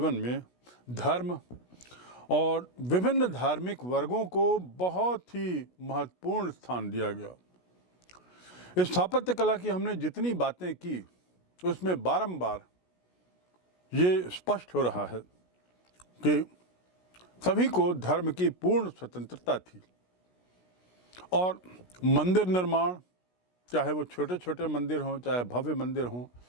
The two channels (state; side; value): late; right; 16 ms